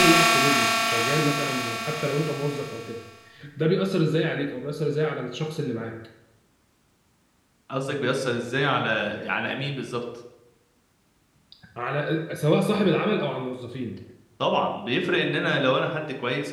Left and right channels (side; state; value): both; identical; correlation 1.00